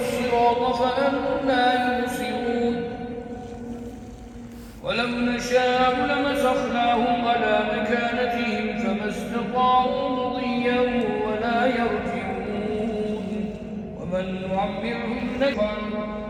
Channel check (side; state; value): both; identical; correlation 1.00